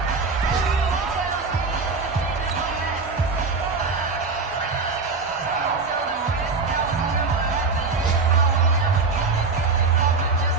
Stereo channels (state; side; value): quieter; left; 4.3 dB